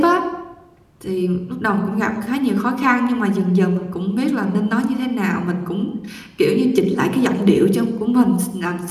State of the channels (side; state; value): both; identical; correlation 1.00